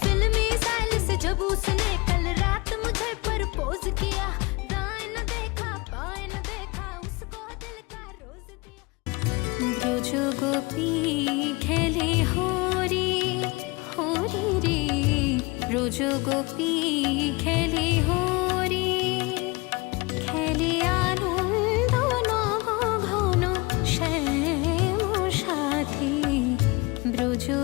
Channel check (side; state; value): right; quieter; 25.5 dB